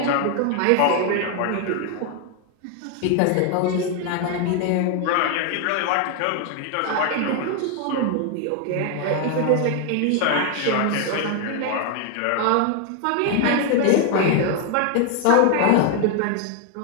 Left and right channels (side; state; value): both; different; correlation 0.01